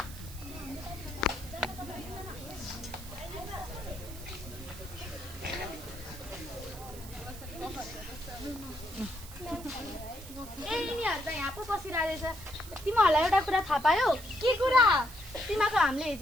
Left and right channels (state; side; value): noise; right; hiss, 15 dB below the sound